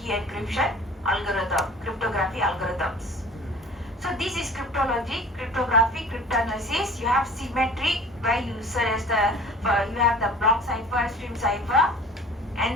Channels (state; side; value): normal; both; correlation 0.44